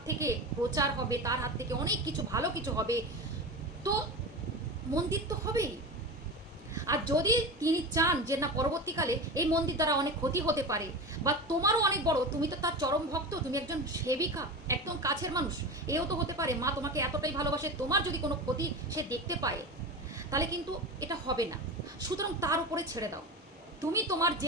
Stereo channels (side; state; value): both; normal; correlation 0.26